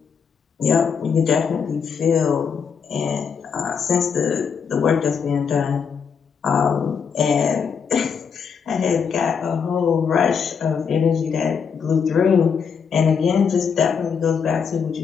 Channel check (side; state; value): right; quieter; 6.4 dB